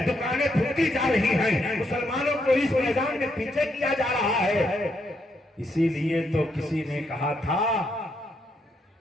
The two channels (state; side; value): normal; both; correlation 0.77